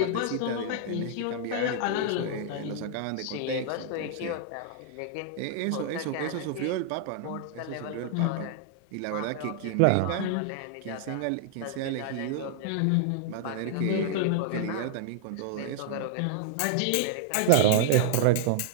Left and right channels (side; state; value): both; different; correlation 0.00